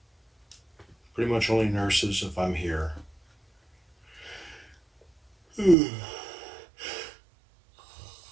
Pretty much only nurses if I'm here.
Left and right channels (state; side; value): drops out; left; at 5.8 s